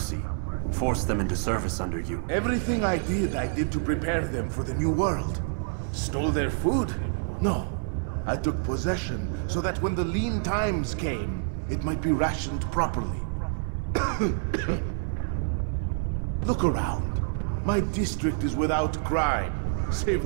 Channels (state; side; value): silent; left; 59 dB below the other